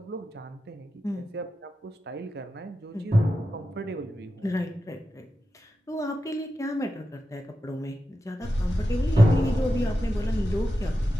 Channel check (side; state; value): both; normal; correlation 0.90